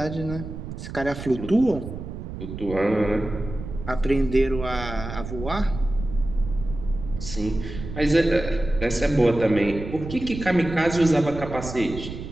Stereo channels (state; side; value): noise; right; rumble, 9 dB below the sound